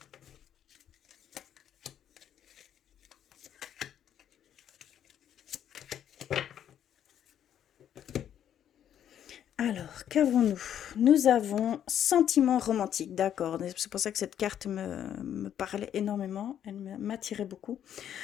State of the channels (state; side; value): quieter; right; 9.9 dB